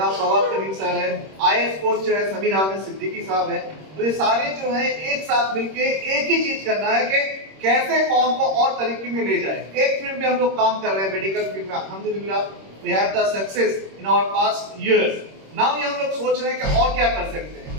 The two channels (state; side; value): late; left; 26 ms